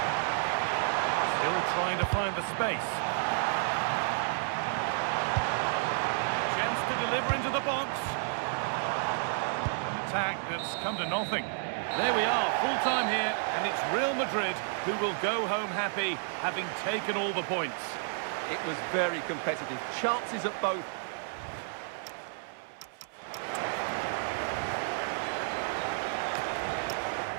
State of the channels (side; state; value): left; silent; 57 dB below the other